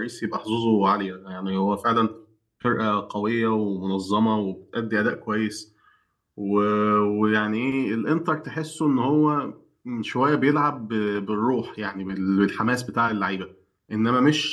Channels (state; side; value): identical; both; correlation 1.00